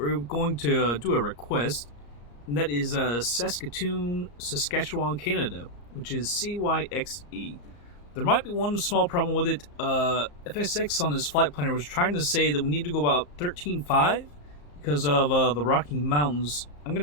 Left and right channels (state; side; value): late; right; 34 ms